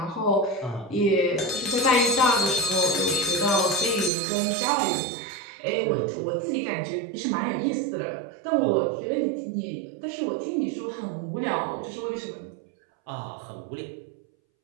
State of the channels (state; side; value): drops out; left; at 4.1 s